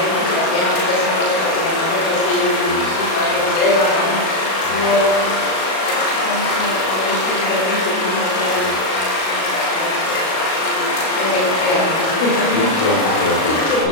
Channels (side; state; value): right; late; 37 ms